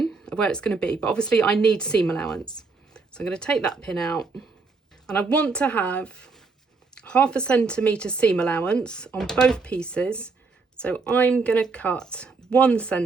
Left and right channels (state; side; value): quieter; left; 4.3 dB